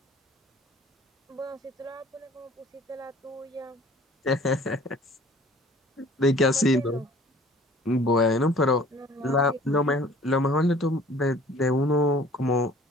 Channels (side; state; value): both; normal; correlation 0.51